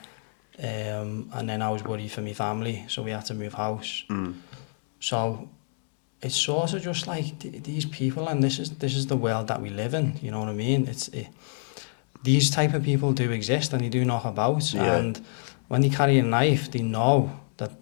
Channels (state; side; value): silent; right; 60 dB below the other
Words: And then I was worried for my family, so we had to move house. So it's sort of just like these people, and this is the world that we live in. You know what I mean? These type of people do exist, and they do knock about. Yeah. And when they carry a knife, they know that